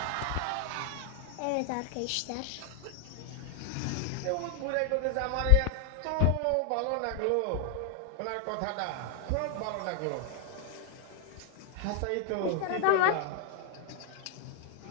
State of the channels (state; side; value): different; both; correlation 0.00